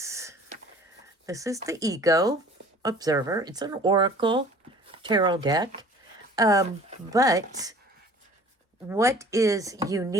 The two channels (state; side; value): normal; both; correlation 0.48